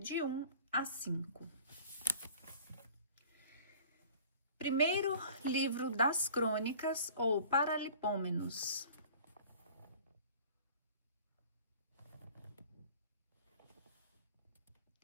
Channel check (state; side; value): inverted; both; correlation -0.47